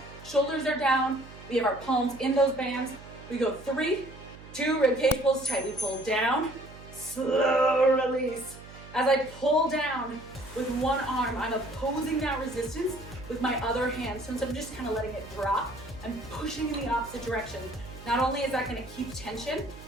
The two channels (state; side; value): noise; right; hum, 17 dB below the sound